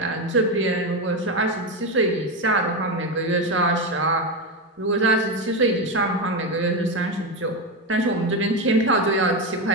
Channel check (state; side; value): normal; both; correlation 0.13